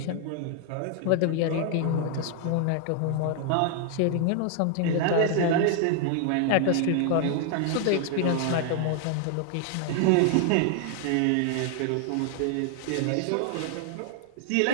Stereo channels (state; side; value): different; both; correlation 0.00